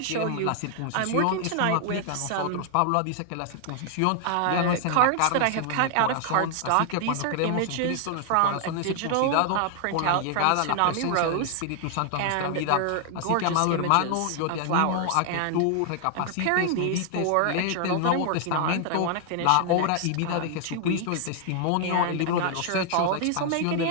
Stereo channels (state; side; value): different; both; correlation 0.00